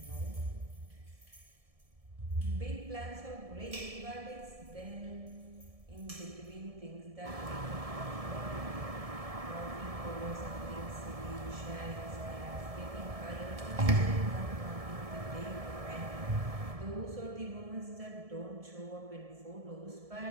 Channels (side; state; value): left; late; 1.7 ms